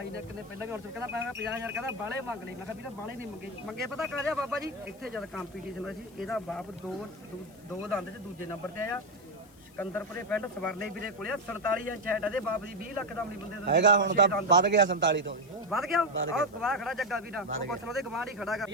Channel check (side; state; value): left; noise; hiss, 27 dB below the sound